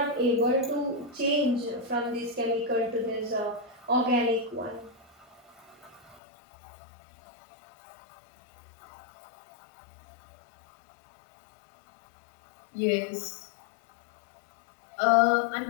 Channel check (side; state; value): right; drops out; at 6.2 s